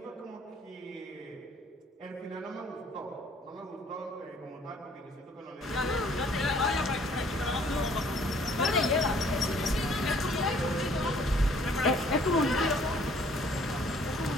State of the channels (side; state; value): both; normal; correlation 0.59